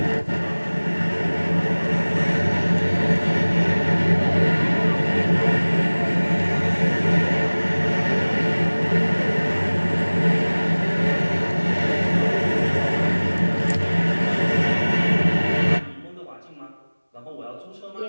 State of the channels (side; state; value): both; inverted; correlation -1.00